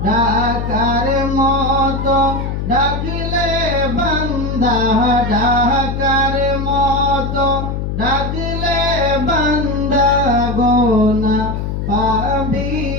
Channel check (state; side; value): noise; left; hum, 3 dB below the sound